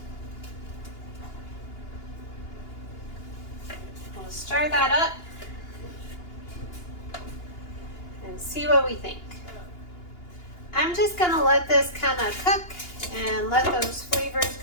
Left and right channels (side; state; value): right; late; 2.8 ms